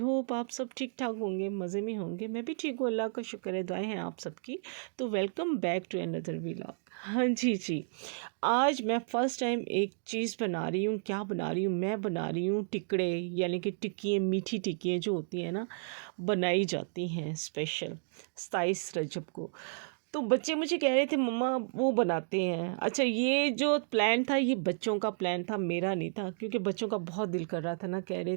आप सब ठीक ठाक होंगे, मज़े में होंगे। मैं भी ठीक हूँ, अल्लाह का शुक्र है, दुआएं हैं आप सबकी। तो welcome back to another vlog. हाँ जी, आज मैं फ़र्स्ट टाइम एक चीज़ बना रही हूँ। क्या बना रही हूँ? मैं बना रही हूँ टिकड़े, यानी कि टिक्कियाँ, मीठी टिक्कियाँ जो होती हैं ना, बनाई जाती हैं स्पेशल 27 रजब को। तो बच्चे मुझे कह रहे थे मम्मा वो बनाते हैं। अच्छा, ये जो प्लान था ये बच्चों का प्लान था, मेरा नहीं था, क्योंकि बच्चों का बहुत दिल कर रहा था ना, कह रहे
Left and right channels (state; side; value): silent; left; digital silence